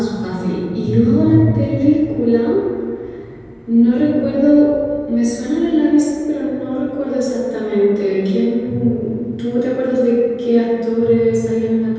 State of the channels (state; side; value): identical; both; correlation 1.00